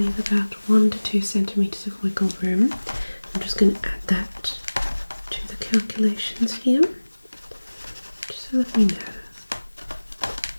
about 1 to 2 centimeters of wiggle room. I'm just going to add that to the calculations here, just so that we know.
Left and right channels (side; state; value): both; inverted; correlation -1.00